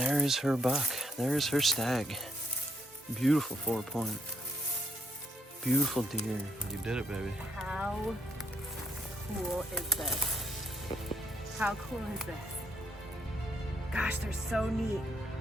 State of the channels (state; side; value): normal; both; correlation 0.73